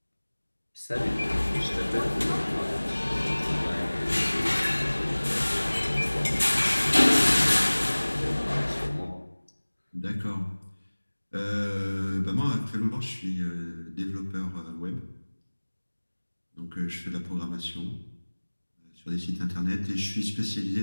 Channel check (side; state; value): both; inverted; correlation -1.00